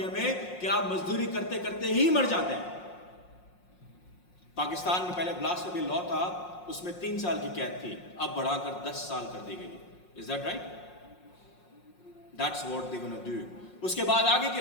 में कि आप मजदूरी करते करते ही मर जाते हैं। पाकिस्तान में पहले ब्लास्फेमी लॉ था, उसमें 3 साल की कैद थी, अब बढ़ाकर 10 साल कर दी गई। Is that right? That's what they gonna do. उसके बाद आगे की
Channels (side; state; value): right; late; 5.6 ms